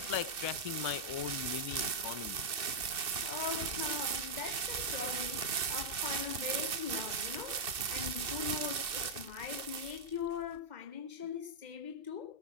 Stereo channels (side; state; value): left; late; 2.6 ms